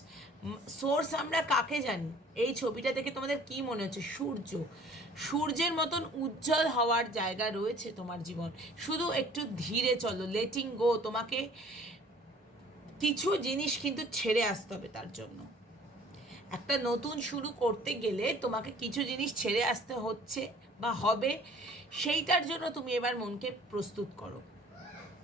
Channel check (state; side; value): normal; both; correlation 0.52